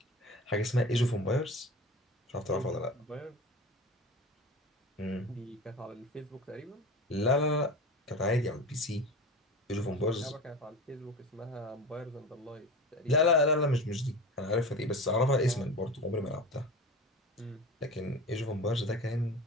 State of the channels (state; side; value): normal; both; correlation 0.31